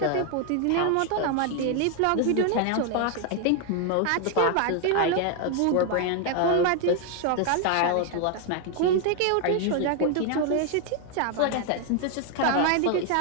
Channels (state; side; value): different; both; correlation 0.00